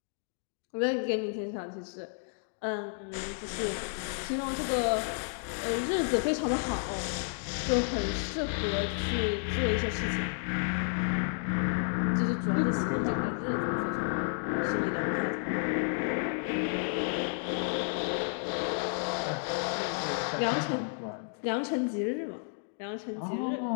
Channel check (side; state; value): right; silent; 57 dB below the other